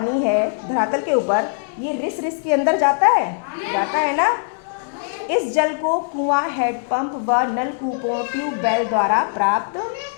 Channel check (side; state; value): right; silent; digital silence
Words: है धरातल के ऊपर, ये रिस रिस के अंदर जाता है ना। इस जल को कुआं, हैंडपंप व नलकूपों, ट्यूबवेल द्वारा प्राप्त